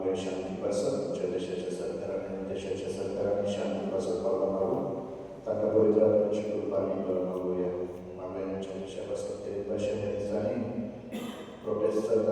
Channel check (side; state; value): both; identical; correlation 1.00